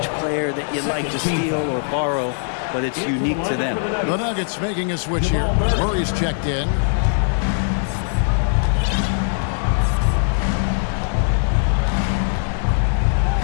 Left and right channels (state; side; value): silent; right; digital silence